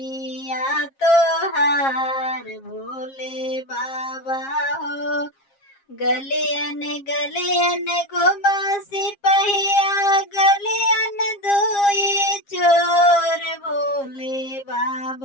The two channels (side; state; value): right; late; 7.4 ms